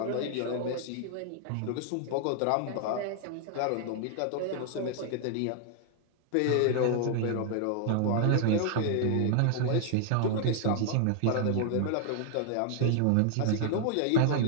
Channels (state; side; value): different; both; correlation 0.00